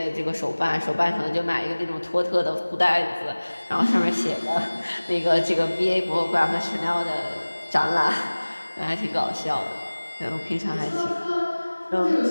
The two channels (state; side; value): inverted; both; correlation -1.00